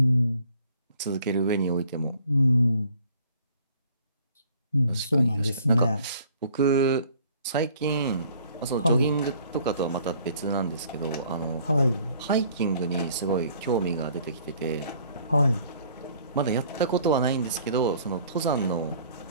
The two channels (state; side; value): inverted; both; correlation -0.57